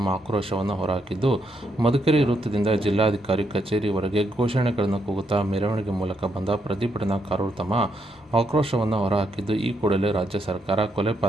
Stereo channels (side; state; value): both; normal; correlation 0.78